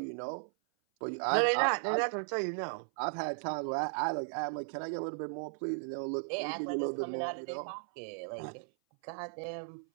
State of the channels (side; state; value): left; silent; 54 dB below the other